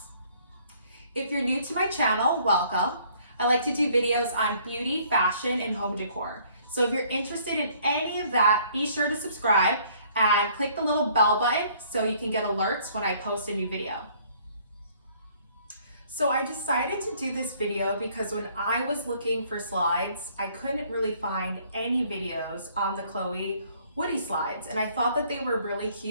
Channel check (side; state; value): both; inverted; correlation -0.60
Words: If you're new to my channel, welcome. I like to do videos on beauty, fashion, and home decor. So if you're interested in any of that, be sure to subscribe and click the little bell button so you can get alerts when I post a new video. So I decided to do this video because when I was looking for slides, I couldn't really find any videos on the Chloé Woody slides. And I thought that they were really